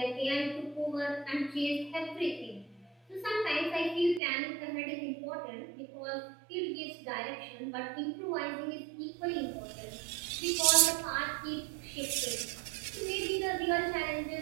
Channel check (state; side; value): drops out; left; at 4.2 s